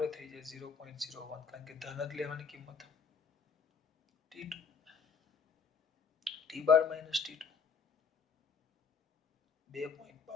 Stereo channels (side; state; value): right; quieter; 5.6 dB